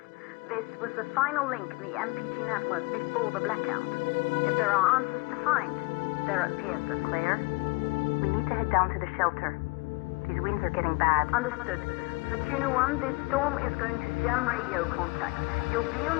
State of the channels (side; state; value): right; quieter; 26.0 dB